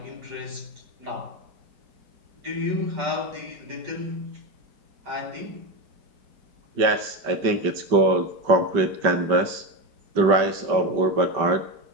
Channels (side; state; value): left; late; 5.2 ms